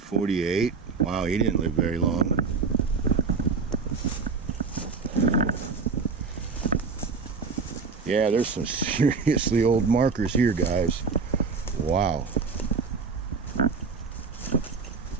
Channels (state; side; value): quieter; left; 4.8 dB